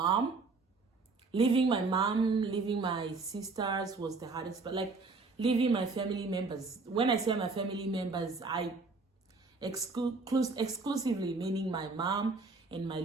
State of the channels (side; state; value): left; quieter; 3.9 dB